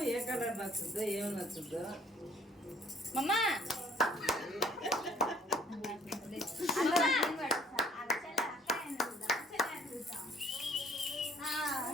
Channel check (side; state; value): both; normal; correlation 0.58